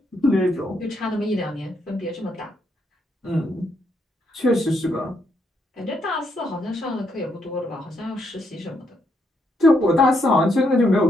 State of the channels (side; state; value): both; normal; correlation 0.76